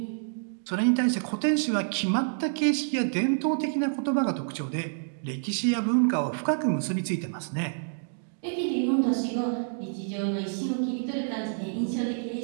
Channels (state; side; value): silent; left; digital silence